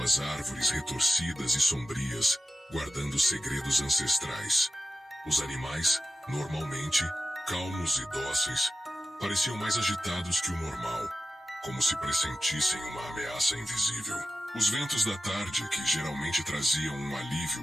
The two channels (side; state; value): both; normal; correlation 0.93